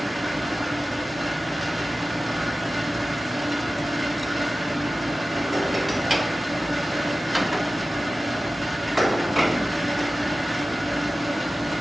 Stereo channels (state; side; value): normal; both; correlation 0.95